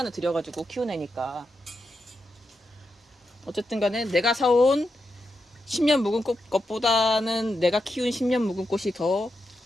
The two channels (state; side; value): normal; both; correlation 0.86